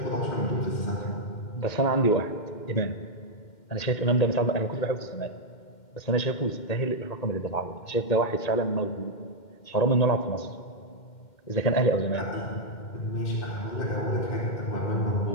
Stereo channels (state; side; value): late; right; 2.1 ms